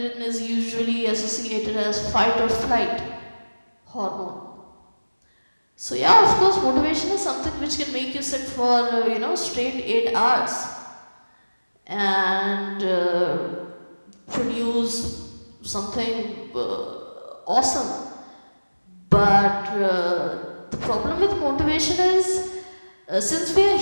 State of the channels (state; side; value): inverted; both; correlation -1.00